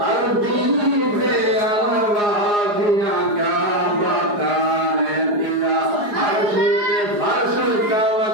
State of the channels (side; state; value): left; late; 4.8 ms